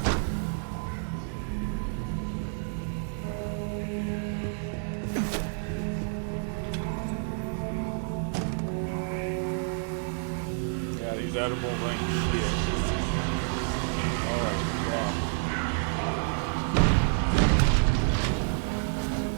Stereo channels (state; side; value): silent; left; 59 dB below the other